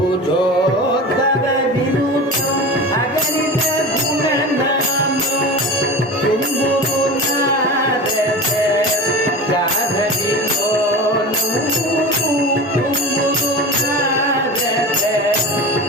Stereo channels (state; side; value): normal; both; correlation 0.30